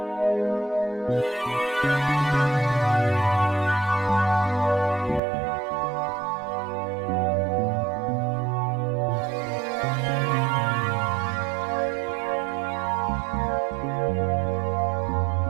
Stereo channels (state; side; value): drops out; left; at 5.2 s